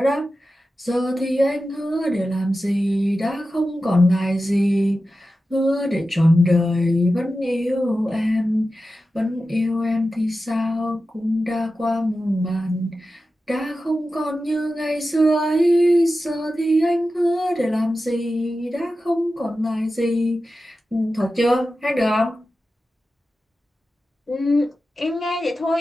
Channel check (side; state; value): both; normal; correlation 0.93